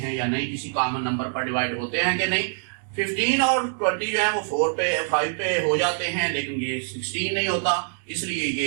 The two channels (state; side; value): silent; left; digital silence